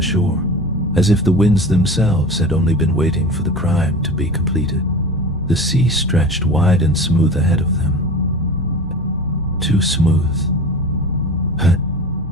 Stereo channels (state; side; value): normal; both; correlation 0.34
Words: shore, as if the winds themselves had only been waiting for the crime to be completed. The sea stretched wide and smooth ahead of them. Too smooth.